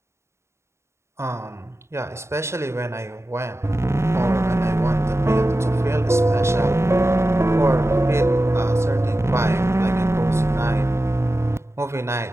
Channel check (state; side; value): late; left; 0.13 ms